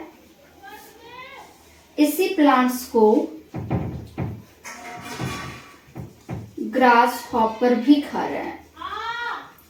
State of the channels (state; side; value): identical; both; correlation 1.00